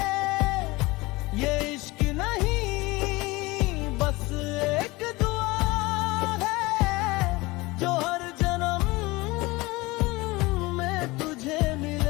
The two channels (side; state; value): right; quieter; 22.2 dB